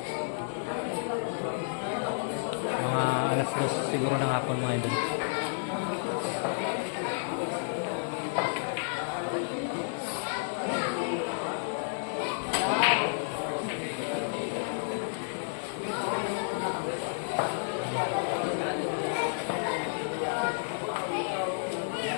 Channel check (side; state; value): right; silent; digital silence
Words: Mga alas 2 siguro ng hapon mga idol.